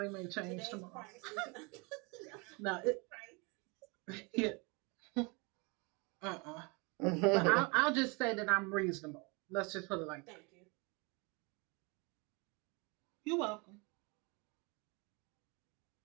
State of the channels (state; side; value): quieter; left; 29.7 dB